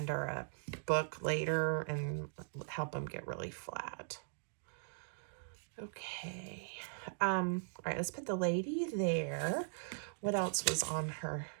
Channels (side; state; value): left; silent; digital silence